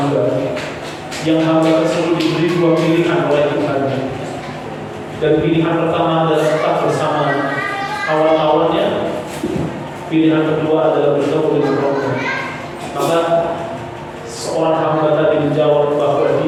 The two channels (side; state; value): both; identical; correlation 1.00